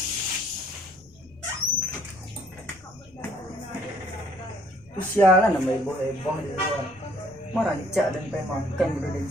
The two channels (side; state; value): left; noise; rumble, 27 dB below the sound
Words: Sialan nama ibu di luar. Merancak dan pengen makan udah